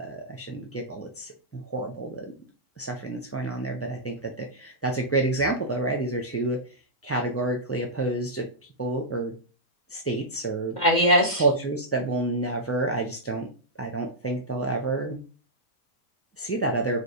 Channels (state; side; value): late; right; 2.1 ms